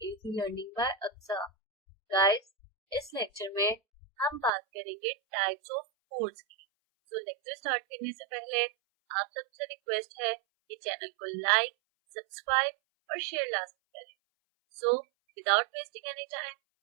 Easy Learning by Aksa. Guys, इस लेक्चर में हम बात करेंगे टाइप्स ऑफ कोड्स की। तो लेक्चर स्टार्ट करने से पहले आप सबसे रिक्वेस्ट है कि चैनल को लाइक, सब्सक्राइब और शेयर लाजमी करें। So without wasting any time,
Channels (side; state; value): left; drops out; at 4.5 s